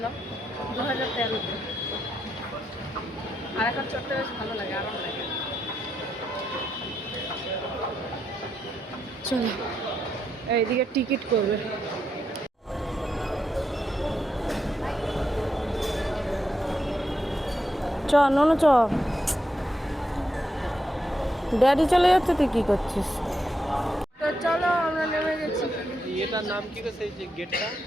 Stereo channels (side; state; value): both; normal; correlation 0.82